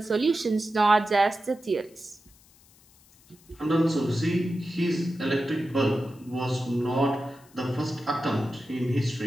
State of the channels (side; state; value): left; noise; hiss, 28 dB below the sound